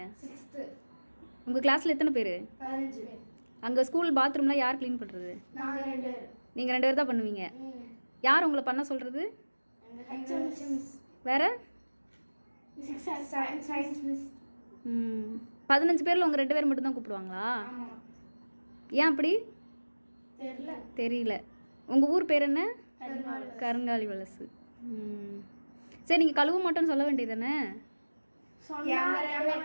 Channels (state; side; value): inverted; both; correlation -1.00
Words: உங்கள் கிளாஸில் எத்தனை பேர்? அங்கே ஸ்கூல் பாத்ரூம்லாம் யார் க்ளீன் பண்ணுறது? நீங்கள் 2 பேர் தான் பண்ணுவீங்க. யார் உங்களை பண்ண சொல்கிறது? வேறு 15 பேரில் உங்கள் 2 பேர் மட்டும்தான் கூப்பிடுவாங்களா? ஏன் அப்படி தெரியல. உங்கள் ஊர் பேர் என்ன? கருங்காலி வலசு. சரி, நீங்கள் கழுவ மாட்டோன்னு சொல்ல வேண்டியது தானே?